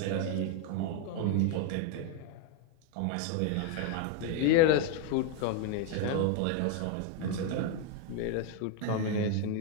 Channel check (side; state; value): both; different; correlation 0.01